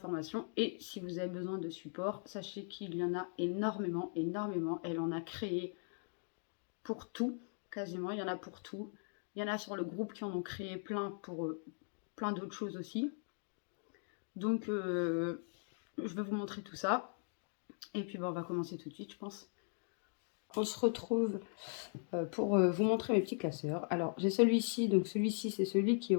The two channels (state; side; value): silent; right; 52 dB below the other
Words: Et si vous avez besoin de support, sachez qu'il y en a énormément, énormément. Elle en a créé pour tout. Quasiment, il y en a pour tout. Il y en a sur le groupe qui en ont créé plein pour plein d'autres choses aussi. Donc, je vais vous montrer tout ça. Et puis, on va commencer tout de suite, je pense. On se retrouve pour vous montrer mes petits classeurs. Alors, j'ai celui-ci. Donc, celui-ci, c'est celui qui est